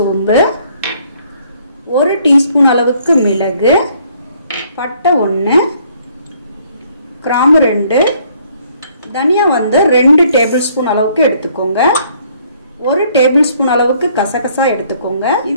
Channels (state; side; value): inverted; both; correlation -0.64